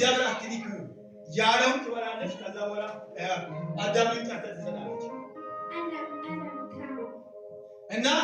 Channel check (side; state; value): both; identical; correlation 1.00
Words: አትንኩ ያለውን ትበላለች። ከዛ በኋላ አዳምን ጠርታ ትሰጣለች እና